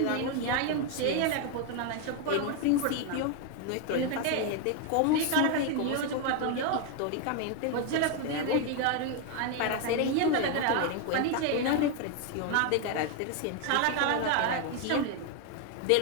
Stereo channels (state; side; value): different; both; correlation 0.01